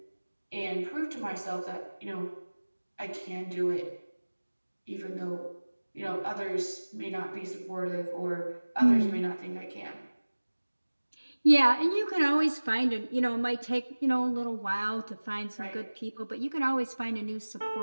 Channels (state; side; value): inverted; both; correlation -1.00